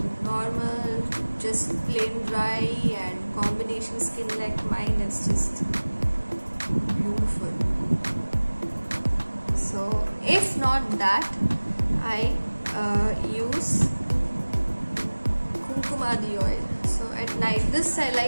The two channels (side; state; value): both; inverted; correlation -1.00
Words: normal, just plain dry, and combination skin like mine is just beautiful. So if not that, I use Kumkumadi oil. So at night, this I